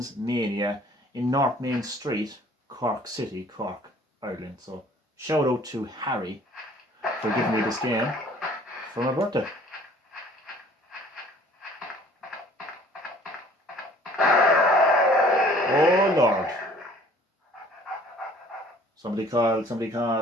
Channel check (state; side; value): normal; both; correlation 0.53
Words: Mania in North Main Street, Cork City, Cork, Ireland. So shout out to Harry for giving me this game for my birthday. Oh Lord. Somebody call, I